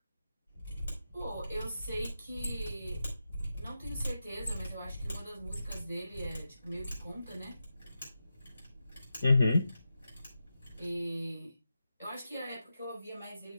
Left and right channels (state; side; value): inverted; both; correlation -0.90